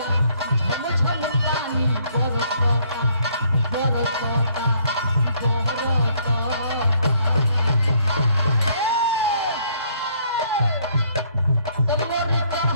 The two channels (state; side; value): inverted; both; correlation -0.66